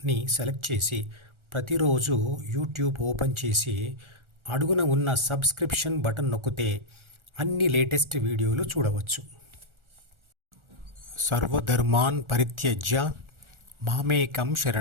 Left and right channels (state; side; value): late; left; 1.4 ms